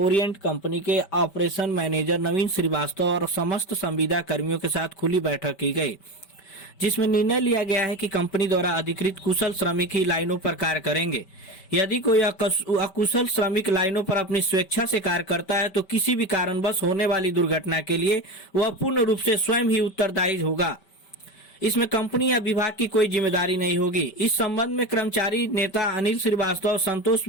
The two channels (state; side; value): late; right; 5.2 ms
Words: कंपनी के ऑपरेशन मैनेजर नवीन श्रीवास्तव और समस्त संविदा कर्मियों के साथ खुली बैठक की गई, जिसमें निर्णय लिया गया है कि कंपनी द्वारा अधिकृत कुशल श्रमिक ही लाइनों पर कार्य करेंगे। यदि कोई अकुशल श्रमिक लाइनों पर अपनी स्वेच्छा से कार्य करता है तो किसी भी कारणवश होने वाली दुर्घटना के लिए वह पूर्ण रूप से स्वयं ही उत्तरदायी होगा। इसमें कंपनी या विभाग की कोई जिम्मेदारी नहीं होगी। इस संबंध में कर्मचारी नेता अनिल श्रीवास्तव और संतोष